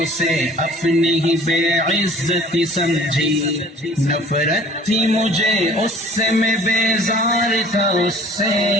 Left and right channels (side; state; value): both; normal; correlation 0.49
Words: اسے اپنی ہی بے عزتی سمجھی، نفرت تھی مجھے اس سے، میں بیزار تھا اس